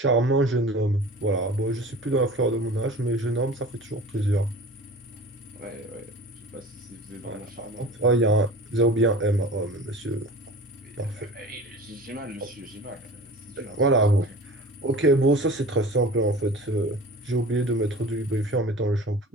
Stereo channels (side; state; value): both; normal; correlation 0.39